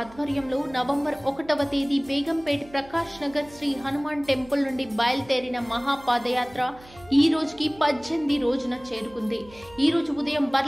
నవంబర్ 1వ తేదీ బేగంపేట్ ప్రకాష్ నగర్ శ్రీ హనుమాన్ టెంపుల్ నుండి బయలుదేరిన మహాపాదయాత్ర ఈ రోజుకి 18 రోజున చేరుకుంది. ఈ రోజు ఉదయం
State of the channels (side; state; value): right; noise; hum, 23 dB below the sound